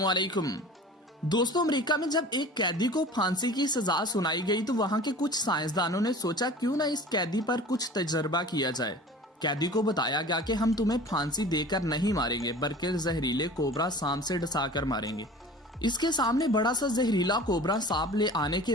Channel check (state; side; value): normal; both; correlation 0.41